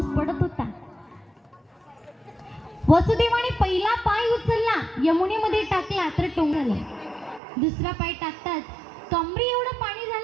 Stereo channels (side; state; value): left; drops out; at 7.4 s